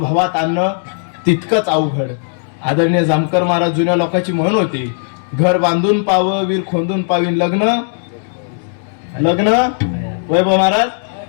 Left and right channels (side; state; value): right; silent; digital silence